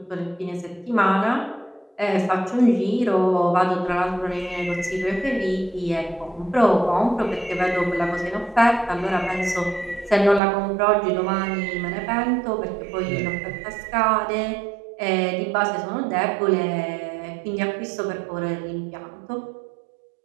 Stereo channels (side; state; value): left; drops out; at 10.4 s